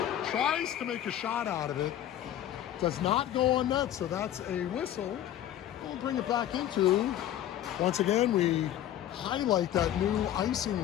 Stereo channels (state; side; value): quieter; right; 11.8 dB